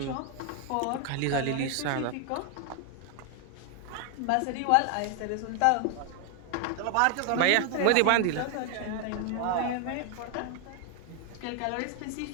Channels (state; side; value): different; both; correlation 0.00